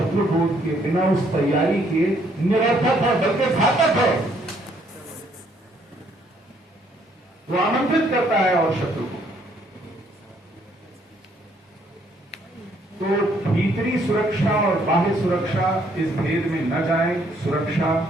बोध के, बिना उस तैयारी के निरर्थक है, बल्कि घातक है। वो आमंत्रित करता है और शत्रु को। तो भीतरी सुरक्षा और बाह्य सुरक्षा, इस भेद में न जाएं। सुरक्षा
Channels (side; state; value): both; normal; correlation 0.67